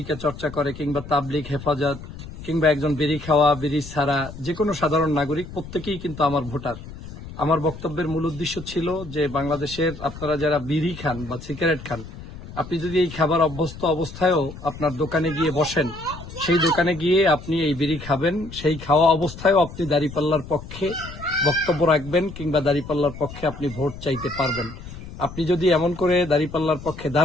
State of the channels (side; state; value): left; noise; rumble, 13 dB below the sound